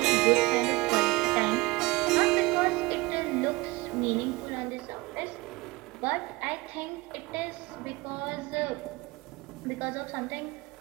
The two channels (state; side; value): quieter; left; 22.6 dB